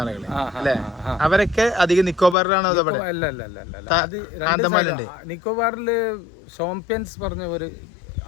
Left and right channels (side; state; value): right; drops out; at 2.4 s